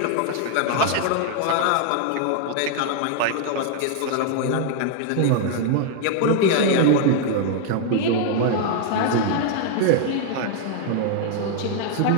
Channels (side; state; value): both; different; correlation 0.00